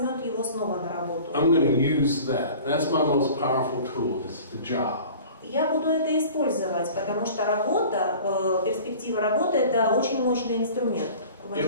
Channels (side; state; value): both; inverted; correlation -0.43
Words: его снова на работу. I'm going to use that. That's my most powerful tool, is the job. Я буду это использовать, потому что работа, перспектива работы – это очень мощный инструмент